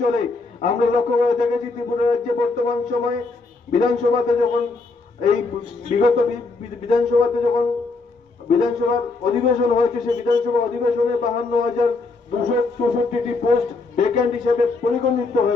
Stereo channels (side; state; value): right; quieter; 3.7 dB